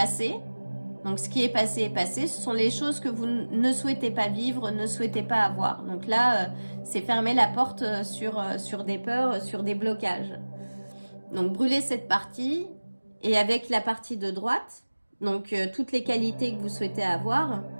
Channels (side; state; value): both; inverted; correlation -1.00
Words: Donc ce qui est passé est passé, ce sont les choses que vous ne souhaitez pas vivre, ne souhaitez pas avoir. Donc là, c'est fermer la porte sur des peurs, sur des blocages. Donc brûlez cette partie et avec la partie de droite, donc toutes les qualités que vous souhaitez avoir,